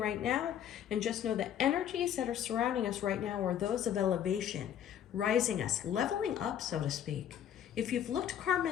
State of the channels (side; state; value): right; quieter; 9.9 dB